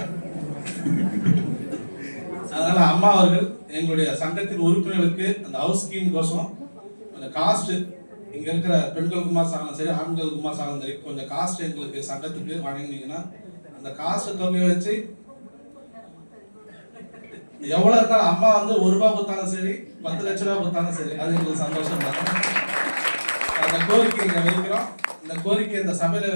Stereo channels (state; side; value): inverted; both; correlation -1.00